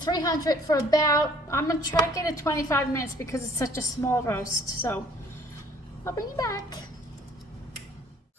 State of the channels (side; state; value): both; normal; correlation 0.57